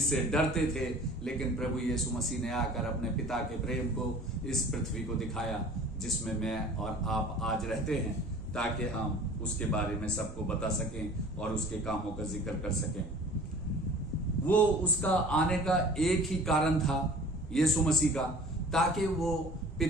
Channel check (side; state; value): both; normal; correlation 0.45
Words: डरते थे। लेकिन प्रभु यीशु मसीह ने आकर अपने पिता के प्रेम को इस पृथ्वी को दिखाया, जिसमें मैं और आप आज रहते हैं, ताकि हम उसके बारे में सबको बता सकें और उसके कामों का जिक्र कर सकें। वो उसका आने का एक ही कारण था, यीशु मसीह का, ताकि वो